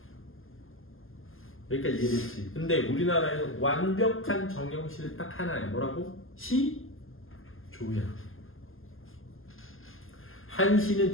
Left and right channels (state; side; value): late; right; 0.59 ms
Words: 여기까지 이해됐지? 근데 우리나라에서 완벽한 정형시는 딱 하나야. 뭐라고? 시조야. 한시는